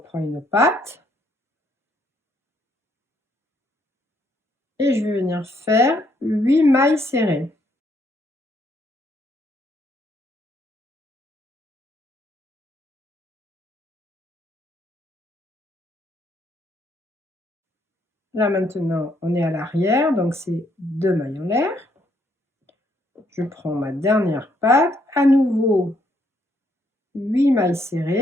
une patte. Et je vais venir faire 8 mailles serrées. Là maintenant, on est à l'arrière, donc c'est 2 mailles en l'air. Je prends ma dernière patte, à nouveau 8 mailles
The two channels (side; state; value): both; normal; correlation 0.71